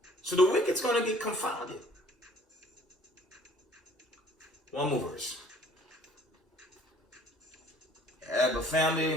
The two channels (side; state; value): both; normal; correlation 0.55